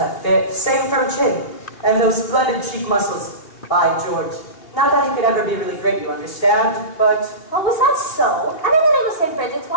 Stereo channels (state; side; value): late; right; 2.8 ms